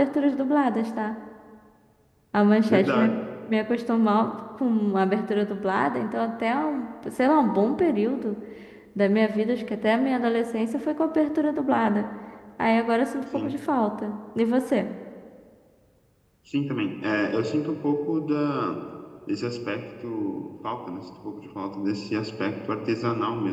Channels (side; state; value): both; identical; correlation 1.00